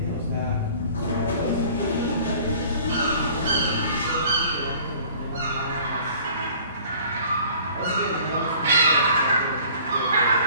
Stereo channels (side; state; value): both; inverted; correlation -0.51